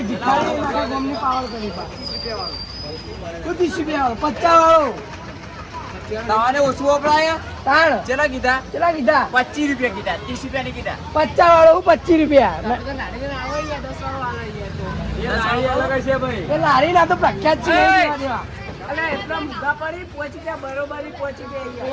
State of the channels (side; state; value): both; identical; correlation 1.00